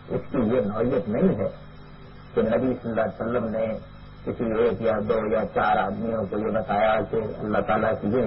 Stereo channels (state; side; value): identical; both; correlation 1.00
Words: اس کی یہ نوعیت نہیں ہے کہ نبی صلی اللہ علیہ وسلم نے کسی ایک یا دو یا چار آدمیوں کو یہ بتایا کہ اللہ تعالیٰ کی یہ